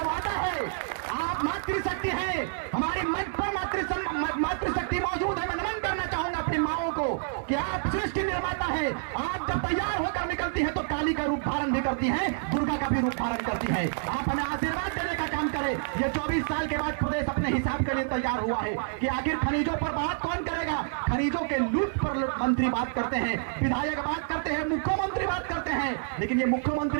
वादा है। आप मातृशक्ति हैं, हमारी मंच पर मातृशक्ति मौजूद है। मैं नमन करना चाहूंगा अपनी माओं को कि आप सृष्टि निर्माता है। आप जब तैयार होकर निकलती है तो काली का रूप धारण भी करती है, दुर्गा का भी रूप धारण करती है। आप हमें आशीर्वाद देने का काम करें। है। ये 24 साल के बाद प्रदेश अपने हिसाब के लिए तैयार हुआ है कि आखिर खनिजों पर बात कौन करेगा। खनिजों के लूट पर मंत्री बात करते हैं, विधायक बात करते हैं, मुख्यमंत्री बात करते हैं, लेकिन ये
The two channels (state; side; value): silent; left; digital silence